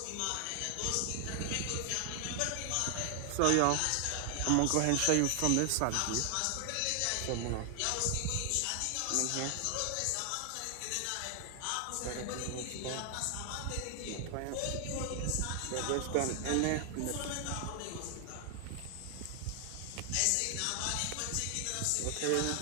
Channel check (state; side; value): different; both; correlation 0.00